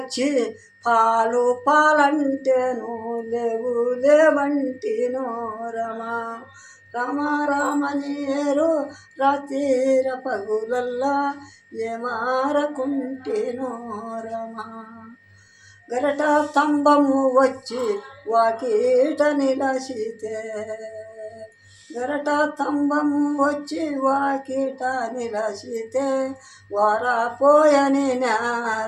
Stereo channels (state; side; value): identical; both; correlation 1.00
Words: పాలు పాలంటేను లేవు లేవంటినో రమ రామ రామని ఏరు రాతీర పగులల్లా ఏమారకుంటినో రమ గరట స్తంభము వచ్చి వాకీట నిలసితే గరట స్తంభము వచ్చి వాకీట నిలసితే వారాపోయని